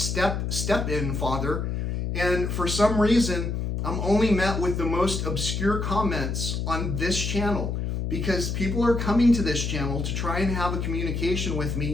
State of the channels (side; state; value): left; noise; hum, 2 dB below the sound